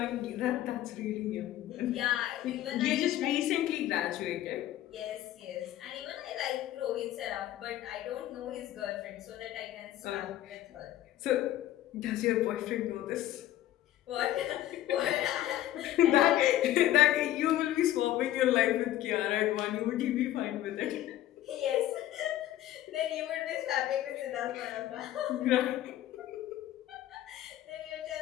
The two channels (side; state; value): right; quieter; 13.3 dB